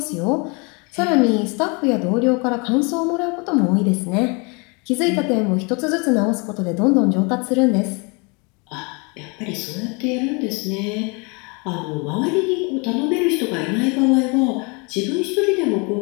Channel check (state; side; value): quieter; right; 31.1 dB